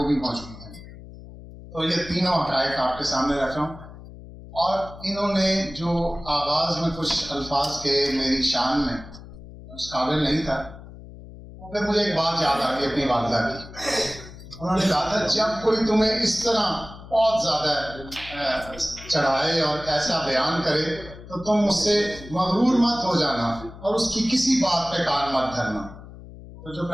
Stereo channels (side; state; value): left; noise; hum, 16 dB below the sound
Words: بھی موجود ہیں. تو یہ تینوں حقائق آپ کے سامنے رکھ رہا ہوں. اور انہوں نے جو آغاز میں کچھ الفاظ کے میری شان میں اس قابل نہیں تھا، وہ پھر مجھے ایک بات یاد آ گئی اپنی والدہ کی. انہوں نے کہا تھا جب کوئی تمہیں اس طرح بہت زیادہ چڑھائے اور ایسا بیان کرے تو تم اس سے مغرور مت ہو جانا اور اس کی کسی بات پہ کان مت دھرنا. تو جو